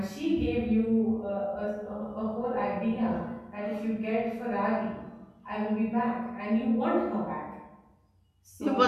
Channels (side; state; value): both; identical; correlation 1.00